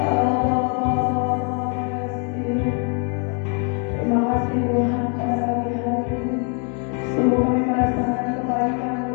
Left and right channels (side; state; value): right; quieter; 39.6 dB